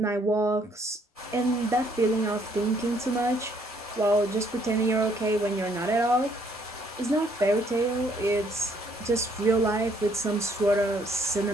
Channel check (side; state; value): both; normal; correlation 0.66